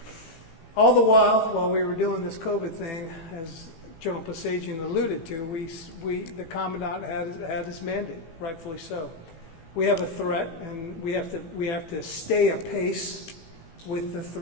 All the while we were doing this COVID thing, as General Pasagian alluded to, the Commandant had his mandate, rightfully so. We have a threat, and we have to stay apace with the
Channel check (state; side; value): late; right; 18 ms